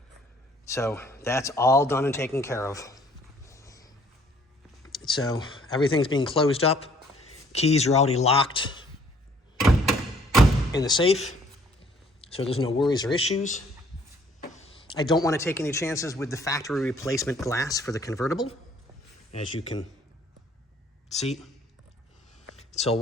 So that's all done and taken care of. So everything's being closed up. Keys are already locked in the safe, so there's no worries or issues. I don't want to take any chances with the factory replacement glass for the convertible, as you can see. So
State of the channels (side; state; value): both; normal; correlation 0.60